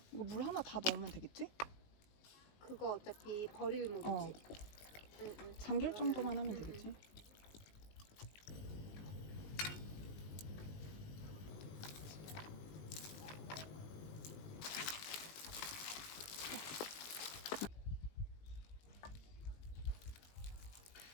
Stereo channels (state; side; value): late; right; 19 ms